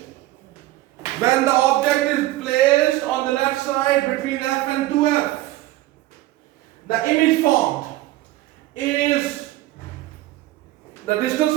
When the object is placed on the left side between F and 2F, the image formed is, the distance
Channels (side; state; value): left; quieter; 16.6 dB